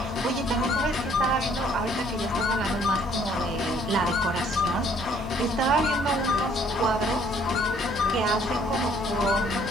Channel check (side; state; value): both; normal; correlation 0.62